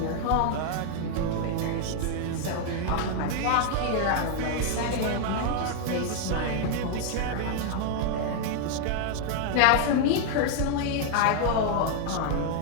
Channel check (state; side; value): different; both; correlation 0.00